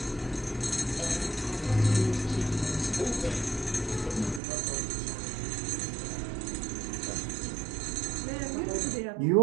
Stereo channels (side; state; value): left; drops out; at 4.4 s